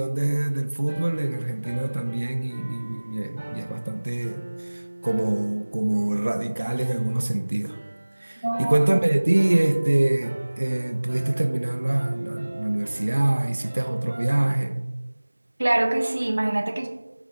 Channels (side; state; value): both; inverted; correlation -1.00